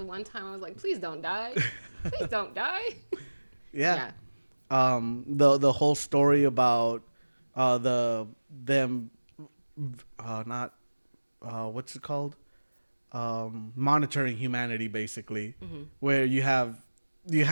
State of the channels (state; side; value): inverted; both; correlation -1.00